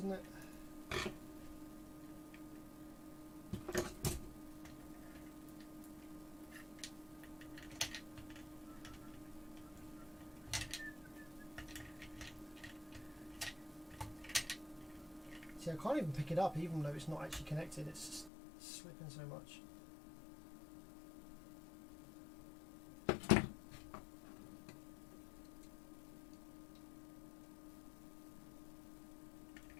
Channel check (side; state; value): right; drops out; at 18.3 s